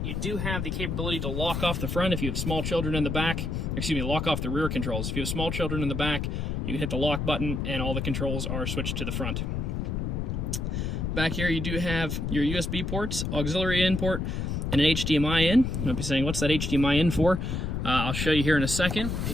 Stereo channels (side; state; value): left; noise; rumble, 2 dB below the sound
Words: You do have the capability to lock off the front if you have small children in the back. Excuse me, lock off the rear controls. If you have small children in the back, you can hit the lock button and all the controls are switched to the front. Back here you do have your USB ports, auxiliary in port, and an HDMI in. You might be saying, what's that HDMI in for? I'll show you here in a second.